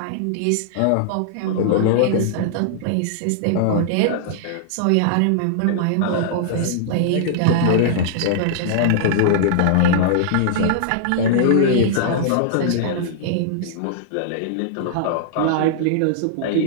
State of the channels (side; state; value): both; different; correlation -0.01